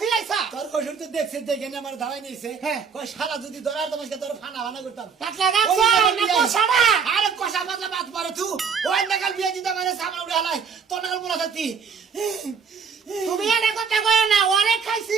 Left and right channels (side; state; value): left; quieter; 6.1 dB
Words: তোর কসুর তো দেখছিস দেখে না আমার ধাওয়াই নিছে হ্যাঁ। কই শালা যদি ধরার তোমাকে তোর ফানা ফানা করতাম পাতলা গাছ না কোছাড়া আরে কষা বাদলা বাদ পারে তুই ওই নাগাল বিয়ে দিতে মানে সামনে উড়ে হালাই তোর নাগাল বলা থাকতি তুমি এটা কথা কয় না ওরে খাইছি